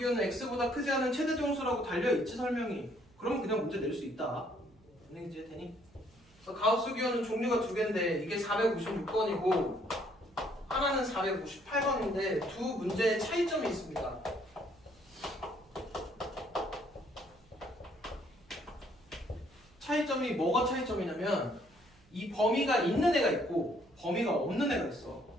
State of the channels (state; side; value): noise; right; hum, 29 dB below the sound